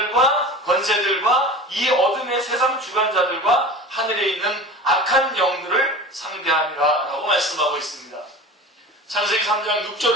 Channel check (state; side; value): normal; both; correlation 0.35